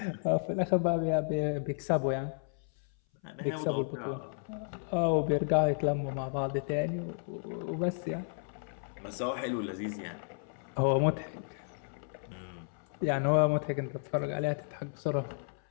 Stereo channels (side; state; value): right; silent; 56 dB below the other